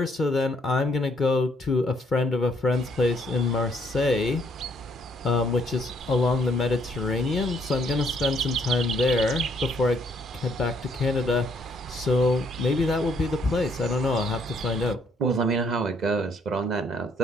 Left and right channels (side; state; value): both; normal; correlation 0.68